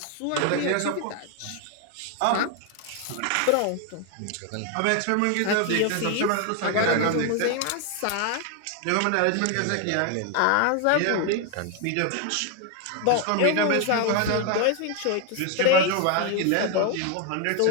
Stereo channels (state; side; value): different; both; correlation 0.01